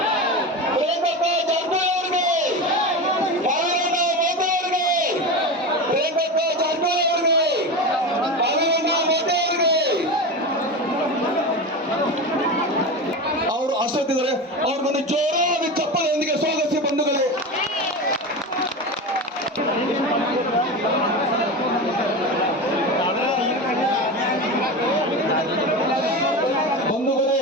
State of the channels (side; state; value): both; normal; correlation 0.24